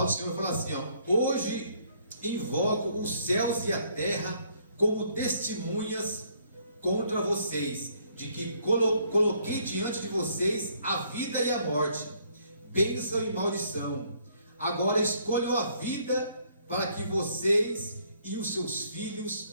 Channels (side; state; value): both; inverted; correlation -0.66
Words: do Senhor fala assim, hoje invoco os céus e a terra como testemunhas contra vocês, de que coloquei diante de vocês a vida e a morte, bênção e maldição. Agora escolham a vida para que vocês e os seus